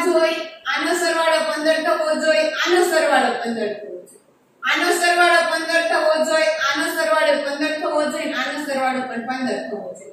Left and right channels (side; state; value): both; identical; correlation 1.00